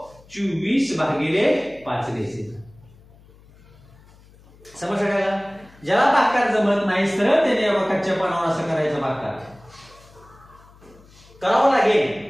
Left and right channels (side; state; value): left; noise; hum, 26 dB below the sound